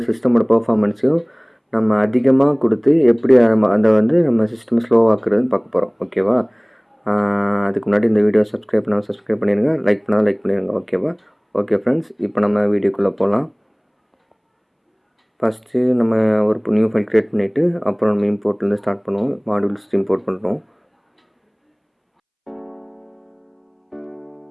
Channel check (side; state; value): both; identical; correlation 1.00